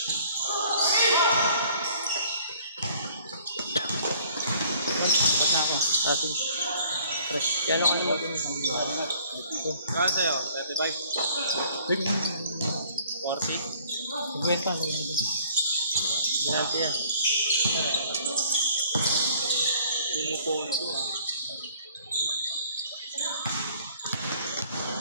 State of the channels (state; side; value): inverted; both; correlation -0.56